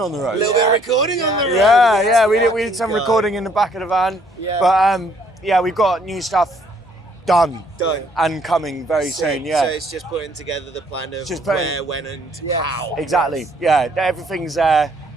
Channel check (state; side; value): normal; both; correlation 0.64